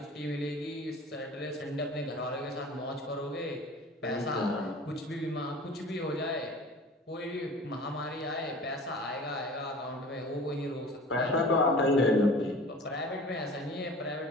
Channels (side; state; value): both; normal; correlation 0.42